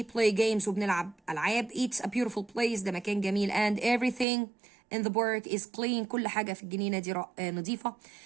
play games وبنلعب ألعاب. It's a beautiful place ده مكان جميل and everything in the park is clean كل حاجة في الجنينة دي نظيفة.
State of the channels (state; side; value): drops out; left; at 4.2 s